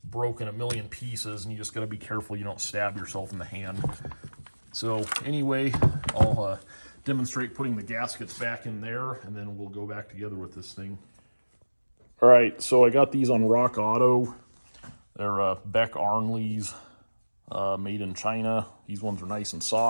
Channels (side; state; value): both; inverted; correlation -1.00